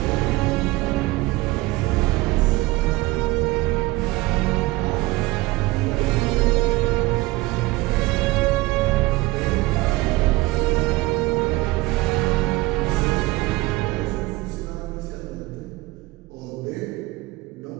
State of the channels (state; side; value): quieter; left; 20.8 dB